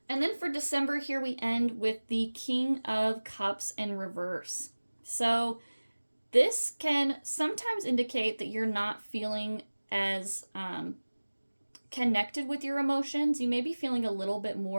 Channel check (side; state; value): both; inverted; correlation -1.00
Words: And then for December here, we end with the King of Cups in reverse. So this can sometimes indicate that you're not feeling as connected with your emotions. You may be feeling a little bit